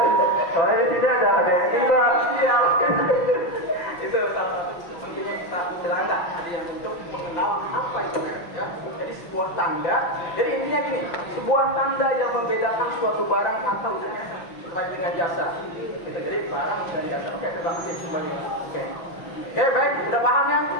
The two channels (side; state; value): right; late; 5.8 ms